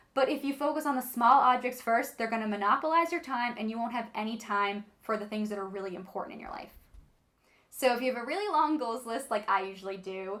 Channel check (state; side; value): identical; both; correlation 1.00